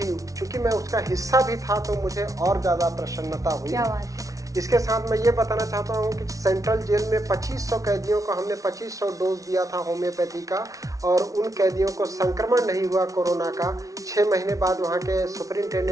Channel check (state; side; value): late; left; 0.17 ms